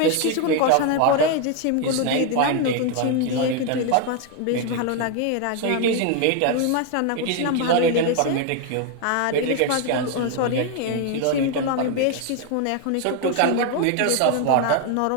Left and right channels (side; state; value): both; different; correlation 0.01